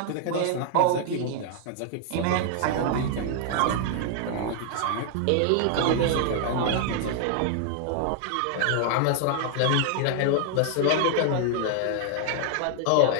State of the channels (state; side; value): different; both; correlation 0.00